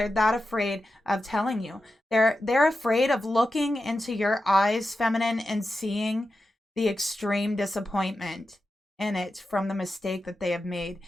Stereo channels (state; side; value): normal; both; correlation 0.91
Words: that afraid of telling you. They're afraid of looking into your eyes, feminine, and seeing the extreme disappointment in it from the mistake that they have made.